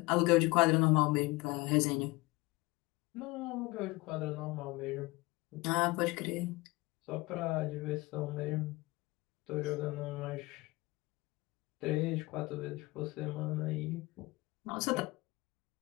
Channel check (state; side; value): quieter; right; 22.5 dB